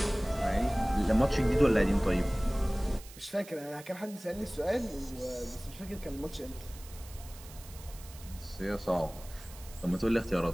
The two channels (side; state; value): right; noise; hiss, 18 dB below the sound